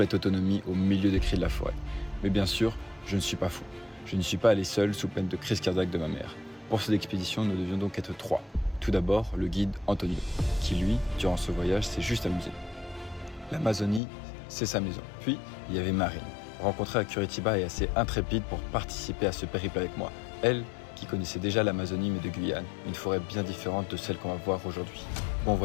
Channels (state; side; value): drops out; right; at 14.0 s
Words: autonomie au milieu des cris de la forêt. Mais bien sûr, je ne suis pas fou. Je ne suis pas allé seul sous peine de crise cardiaque de ma mère. Pour cette expédition, nous devions donc être 3. Tout d'abord, le guide Antonio, qui lui, durant ce voyage, s'est juste amusé. L'Amazonie, c'est sa maison. Puis, il y avait Marine, rencontrée à Curitiba et assez intrépide pour participer à ce périple avec moi. Elle, qui connaissait déjà l'Amazonie mais de Guyane, une forêt bien différente de celle qu'on va voir aujourd'hui. Bon